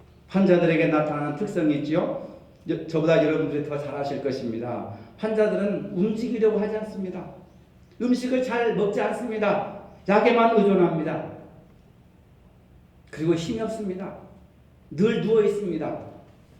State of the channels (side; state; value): both; identical; correlation 1.00